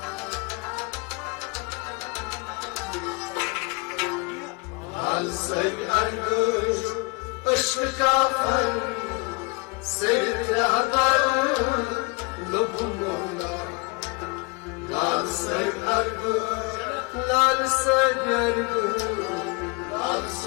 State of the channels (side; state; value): right; quieter; 29.3 dB